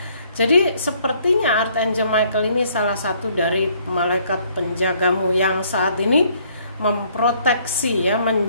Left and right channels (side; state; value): both; inverted; correlation -0.64